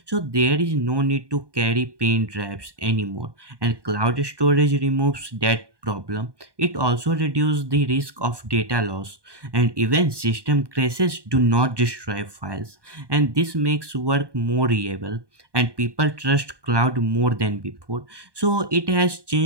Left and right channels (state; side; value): late; left; 1.2 ms